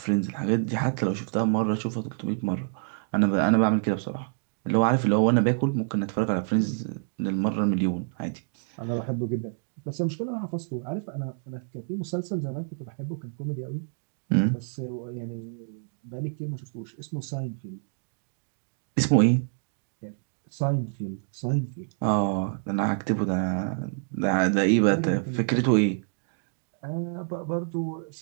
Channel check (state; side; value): silent; left; digital silence